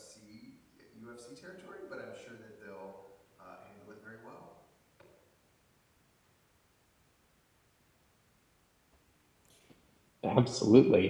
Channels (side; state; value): both; identical; correlation 1.00